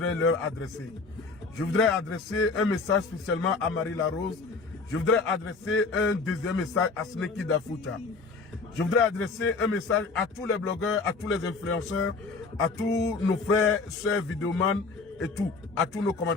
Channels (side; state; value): right; quieter; 4.2 dB